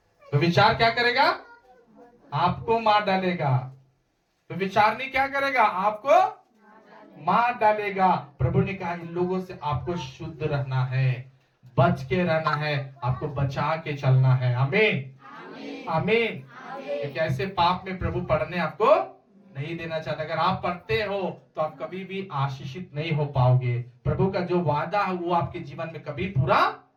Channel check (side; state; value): both; identical; correlation 1.00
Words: तो विचार क्या करेगा, आपको मार डालेगा। तो विचारनी क्या करेगा, आपको मार डालेगा। प्रभु ने कहा इन लोगों से आपको शुद्ध रहना है, बच के रहना है, आपको बचा के चलना है। आमीन, आमीन। एक ऐसे पाप में प्रभु पढ़ने आपको नहीं देना चाहता। अगर आप पढ़ते हो तो आप कभी भी आशीषित नहीं हो पाओगे। प्रभु का जो वादा है वो आपके जीवन में कभी पूरा